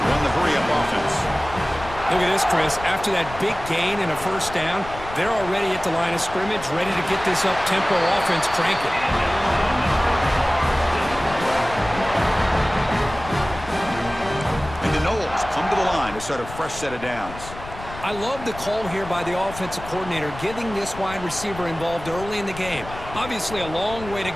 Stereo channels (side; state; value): left; noise; rumble, 13 dB below the sound